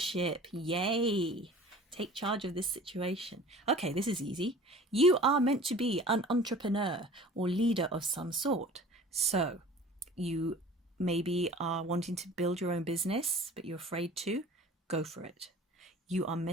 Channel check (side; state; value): both; normal; correlation 0.44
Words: yay! Take charge of this situation. Okay, this is easy. You are meant to be an entrepreneur or leader of some sort. So you maybe are wanting to build your own business, but you're afraid to. Go for it. You are